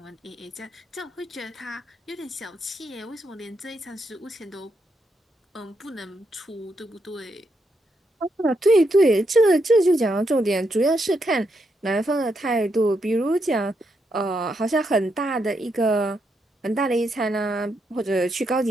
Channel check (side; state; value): both; normal; correlation 0.80